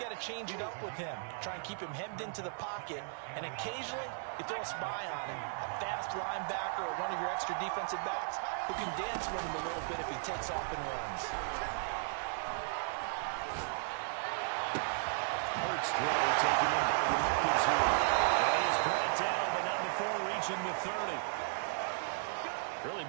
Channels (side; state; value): left; silent; digital silence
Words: got to change it up with him. Try and keep him hemmed into the pocket, and occasionally you throw a spy on him, a fast linebacker or one of your extra defensive backs who can dance with him a little bit if he takes off and runs. Hurts throw taken in by Watkins here. And he is brought down, but not before reaching the 30. Really